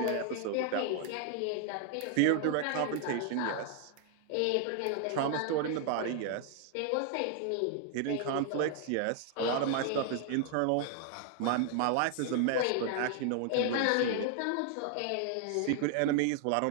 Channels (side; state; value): both; different; correlation 0.00